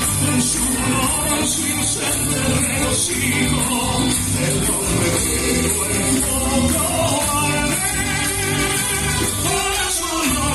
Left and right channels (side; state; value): both; identical; correlation 1.00